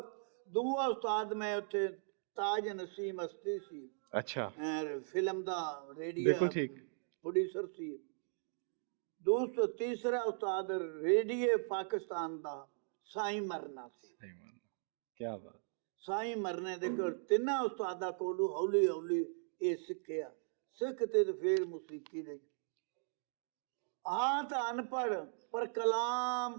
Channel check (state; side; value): silent; left; digital silence